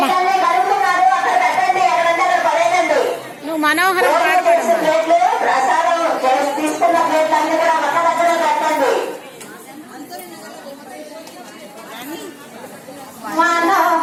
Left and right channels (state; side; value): identical; both; correlation 1.00